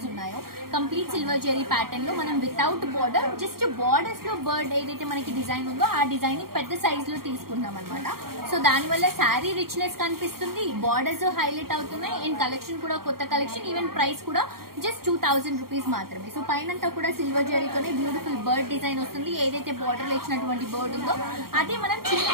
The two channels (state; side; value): late; left; 0.93 ms